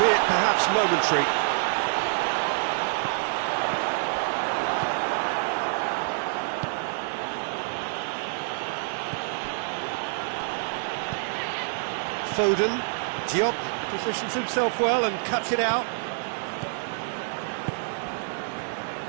perhaps momentary. Foden, Diop positions himself well and cuts it out.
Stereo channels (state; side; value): silent; left; digital silence